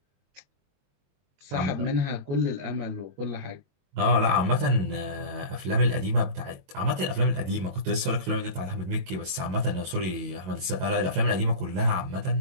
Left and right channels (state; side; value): late; left; 22 ms